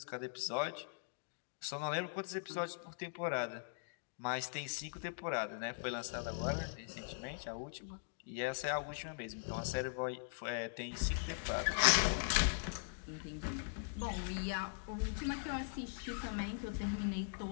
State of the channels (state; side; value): silent; right; digital silence